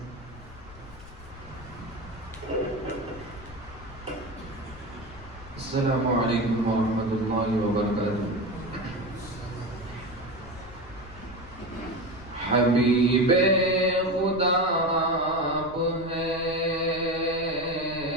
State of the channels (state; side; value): noise; left; rumble, 18 dB below the sound